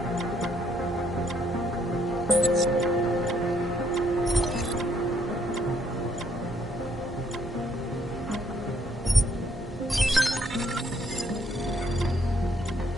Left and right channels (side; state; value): both; normal; correlation 0.70